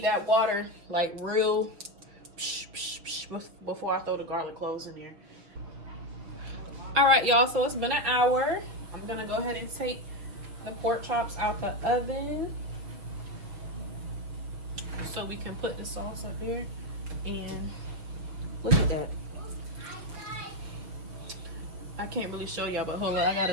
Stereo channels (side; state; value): left; late; 6.2 ms